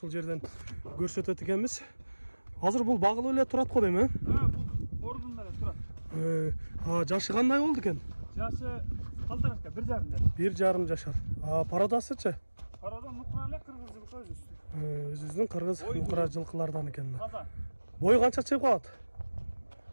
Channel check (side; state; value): both; inverted; correlation -1.00